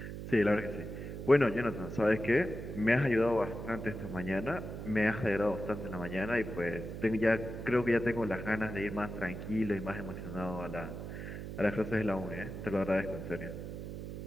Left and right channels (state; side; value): noise; right; hum, 8 dB below the sound